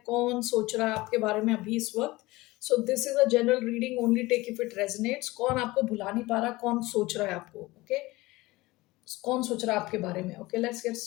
कौन सोच रहा है आपके बारे में अभी इस वक्त। So this is a general reading, only take if it resonates. कौन आपको भुला नहीं पा रहा, कौन सोच रहा है आपको, ओके कौन सोच रहा है आपके बारे में। Okay, let's get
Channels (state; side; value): quieter; right; 20.3 dB